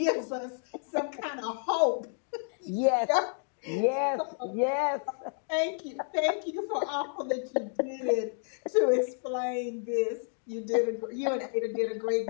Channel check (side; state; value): right; silent; 56 dB below the other